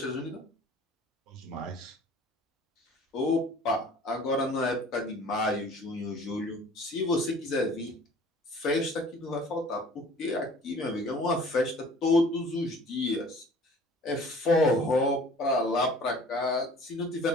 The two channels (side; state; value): both; normal; correlation 0.49